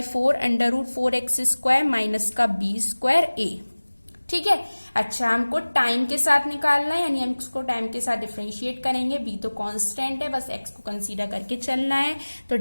√4x स्क्वायर माइनस का बी स्क्वायर ए। ठीक है। अच्छा, हमको टाइम के साथ निकालना है, यानी हम इसको टाइम के साथ डिफरेंशिएट करेंगे। बी तो कांस्टेंट है, बस एक्स को कंसीडर करके चलना है। तो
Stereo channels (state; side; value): inverted; both; correlation -1.00